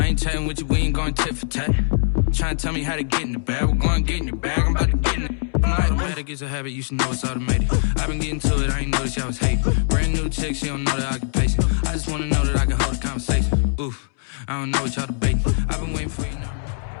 ain't chatting with you, we ain't going tit for tat. Trying to tell me how to get in the bag. We're going to get in your bag, I'm about to get in it. I'm like, automatic is a habit, you should know it's automated. I've been getting to it, I ain't noticed y'all was hating. Brand new chick, she don't know that I can pace it. I just want to know that I can hold a conversation. Oof, I don't know what y'all debating. I've been waiting for you now.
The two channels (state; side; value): silent; right; 64 dB below the other